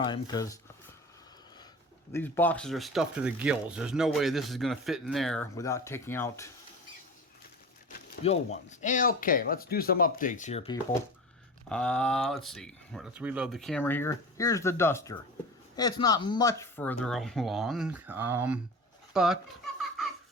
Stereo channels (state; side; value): normal; both; correlation 0.32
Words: because these boxes are stuffed to the gills. There's no way this is going to fit in there without taking out the old ones. Okay, let's do some updates here, people. Let's see. Let's reload the camera here. Here's the duster. It's not much further along, but